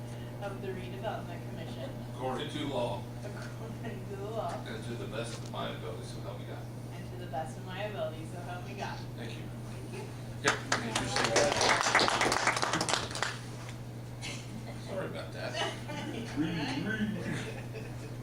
the Redevelopment Commission, according to law according to the law, and to the best of my ability, so help me God. and to the best of my ability, so help me God. Thank you. Thank you. Yep. Sorry about that.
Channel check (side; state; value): both; identical; correlation 1.00